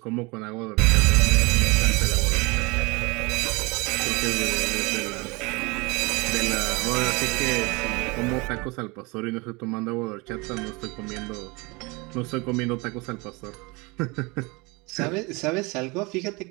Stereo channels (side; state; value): left; quieter; 26.4 dB